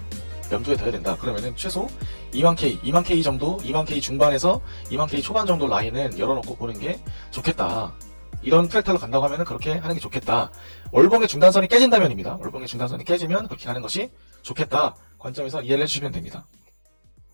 염두에 둬야 된다. 그러면은 최소 2만 K 정도, 2만 K 중반에서 2만 K 초반 정도 라인은 열어놓고 보는 게 좋겠다. 이런 프랙탈로 간다고 하면은 그렇게 하는 게 좋겠다. 월봉의 중단선이 깨진다면입니다. 월봉의 중단선이 깨지면 그렇게 가는 것이 좋겠다. 관점에서 이해를 해주시면 됩니다.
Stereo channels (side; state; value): both; inverted; correlation -1.00